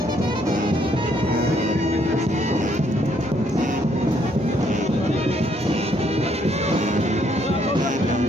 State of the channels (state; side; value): normal; both; correlation 0.69